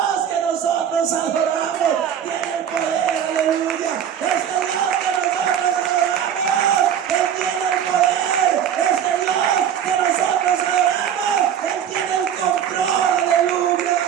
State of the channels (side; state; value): left; quieter; 9.0 dB